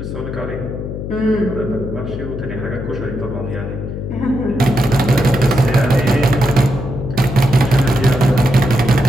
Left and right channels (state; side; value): noise; left; hum, 7 dB below the sound